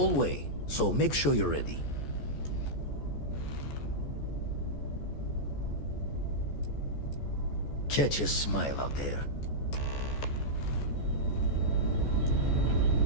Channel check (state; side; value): late; right; 14 ms